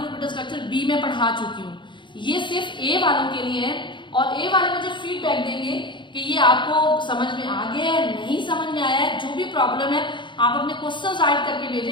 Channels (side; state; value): right; late; 0.23 ms